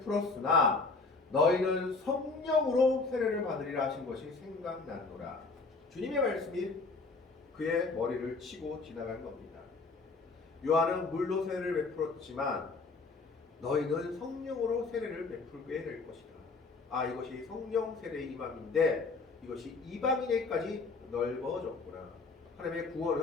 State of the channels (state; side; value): quieter; right; 3.9 dB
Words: 너희는 성령으로 세례를 받으리라 하신 것이 생각났노라. 주님의 말씀이 그의 머리를 치고 지나간 겁니다. 요한은 물로 세례를 베풀었지만 너희는 성령으로 세례를 베풀게 될 것이다. 이것이 성령 세례의 임함인데 이것이 이방인에까지 넓어졌구나. 하나님의